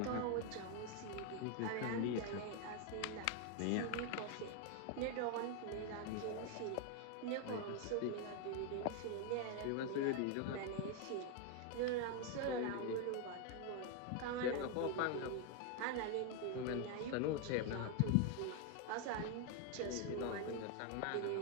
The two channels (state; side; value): different; both; correlation 0.01